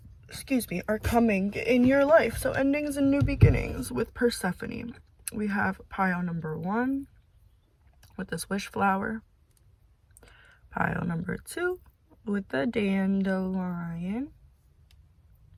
are coming in your life. So endings and new beginnings with Persephone. We have pile number 1 with this wish flower. Pile number 2 with the dandelion.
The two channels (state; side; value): identical; both; correlation 1.00